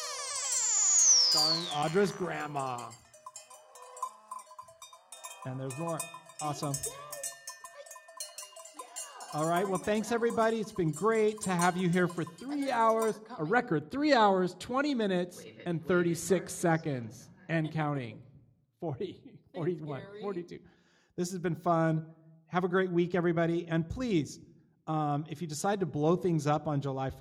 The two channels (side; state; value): both; identical; correlation 1.00